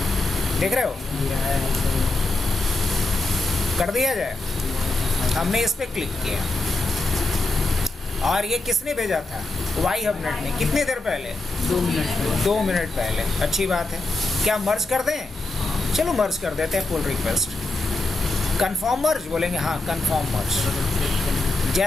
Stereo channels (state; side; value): quieter; right; 3.0 dB